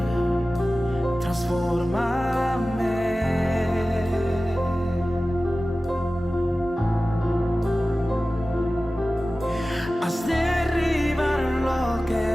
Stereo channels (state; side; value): normal; both; correlation 0.96